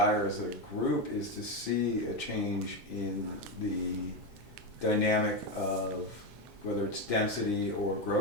as a group is to see a change in the dynamic of whether it's density or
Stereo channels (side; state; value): both; normal; correlation 0.12